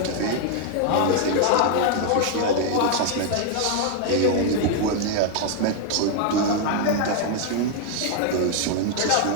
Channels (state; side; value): different; both; correlation 0.00